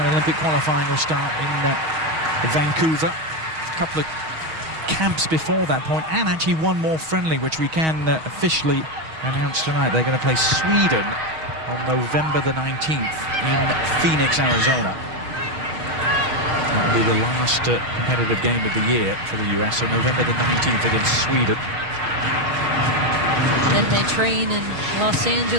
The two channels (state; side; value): late; left; 6.3 ms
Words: Olympic qualifying will start in Vancouver. A couple of camps before that point, and actually one more friendly, which we can officially announce tonight. They're going to play Sweden on November the 19th in Phoenix, Arizona. That will be the last competitive game of the year for the US, so November the 19th against Sweden. Then they train in Los